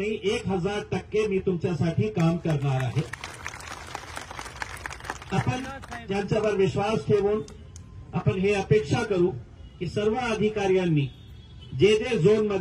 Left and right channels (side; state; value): both; identical; correlation 1.00